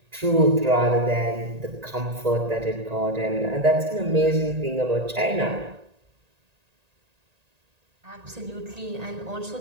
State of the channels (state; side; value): late; left; 1.8 ms